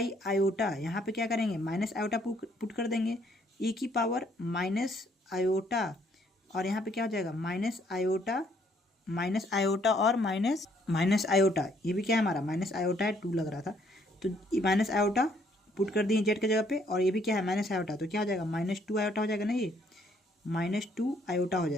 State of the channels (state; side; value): normal; both; correlation 0.67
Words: आयोटा, यहाँ पे क्या करेंगे, माइनस आयोटा पुट कर देंगे, ई की पावर माइनस आयोटा और यहाँ पे क्या हो जाएगा, माइनस आयोटा और माइनस आयोटा, ये भी क्या है हमारा माइनस आयोटा है, 2 लग रहा था तो माइनस आयोटा पुट कर दिए जेड की जगह पे, और ये भी क्या है माइनस आयोटा, तो क्या हो जाएगा, -2 आयोटा हो जाएगा ना, ये -2 आयोटा हो